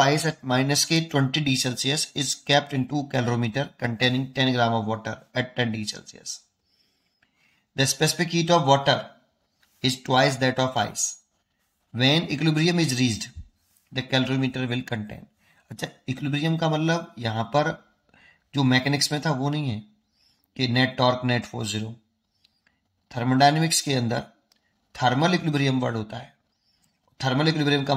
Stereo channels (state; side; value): identical; both; correlation 1.00